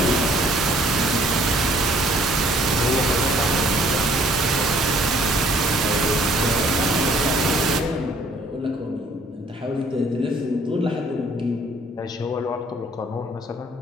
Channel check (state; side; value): normal; both; correlation 0.60